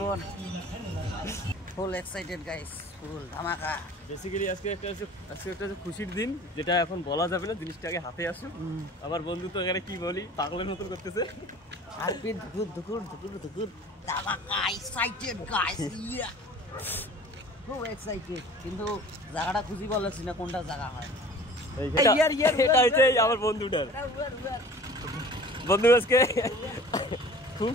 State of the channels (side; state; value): both; normal; correlation 0.45